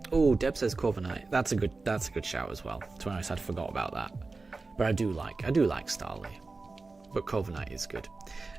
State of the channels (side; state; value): left; quieter; 3.7 dB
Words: Oh, Deb says Corviknight. That's a good shout as well. To be honest, I'd forgot about that. But I do like Starly. But Corviknight is good.